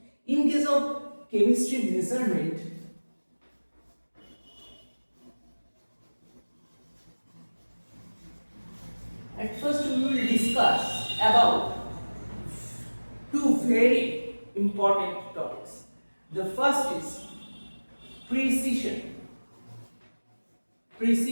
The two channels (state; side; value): inverted; both; correlation -1.00